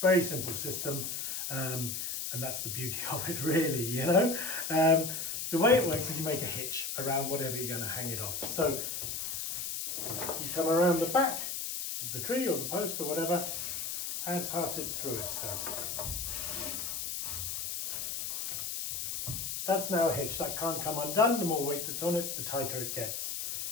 Very simple system, and that's the beauty of it really, you know. The way it works is you make a hitch around whatever you're going to hang it off. So you come around the back of the tree or the post or whatever and pass it through itself. That's now a hitch. That can't come undone. The more weight that's on it, the tighter it gets.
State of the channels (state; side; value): noise; left; hiss, 3 dB below the sound